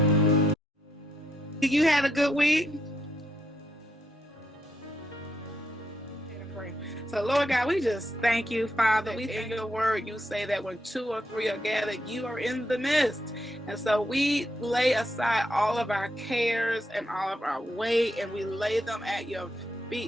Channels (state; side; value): normal; both; correlation 0.79